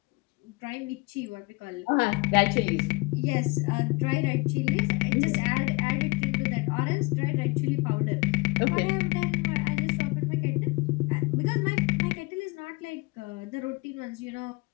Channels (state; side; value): quieter; right; 25.7 dB